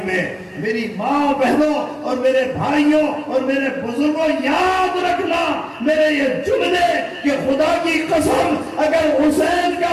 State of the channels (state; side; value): identical; both; correlation 1.00